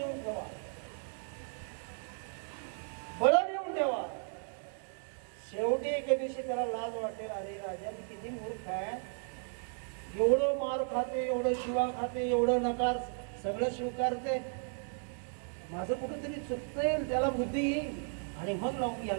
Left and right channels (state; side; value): silent; left; 54 dB below the other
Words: ठेवा, बळ नेऊन ठेवा. शेवटी एके दिवशी त्याला लाज वाटेल, अरे राजा किती मूर्ख आहे, एवढं मार खाते, एवढं शिवा खाते, एवढं नकार सगळं स्वीकारते, माझं कुठेतरी चुकतंय, त्याला बुद्धी येईल आणि मग लावून